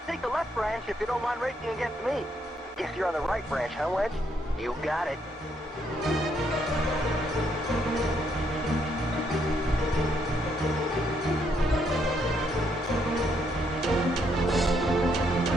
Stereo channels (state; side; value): normal; both; correlation 0.74